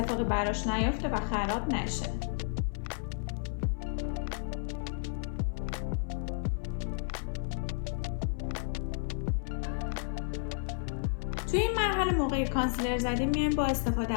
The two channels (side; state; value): right; silent; 56 dB below the other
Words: براش نیفته و خراب نشه. توی این مرحله موقع کانسیلر زدیم میایم با استفاده